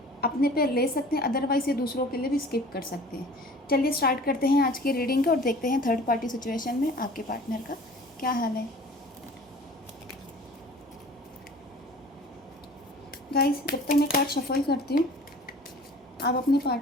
अपने पे ले सकते हैं, अदरवाइज ये दूसरों के लिए भी स्किप कर सकते हैं। चलिए स्टार्ट करते हैं आज की रीडिंग को और देखते हैं थर्ड पार्टी सिचुएशन में आपके पार्टनर का क्या हाल है। गाइस, जब तक मैं कार्ड शफल करती हूँ आप अपने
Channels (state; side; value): normal; both; correlation 0.46